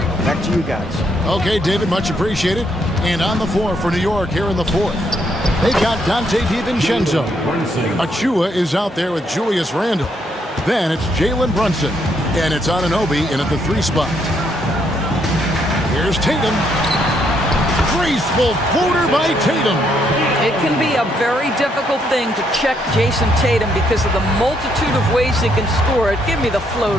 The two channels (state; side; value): normal; both; correlation 0.74